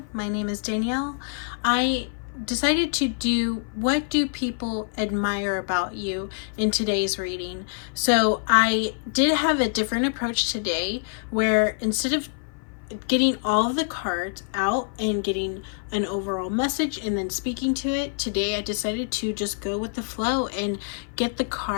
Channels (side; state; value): right; silent; 56 dB below the other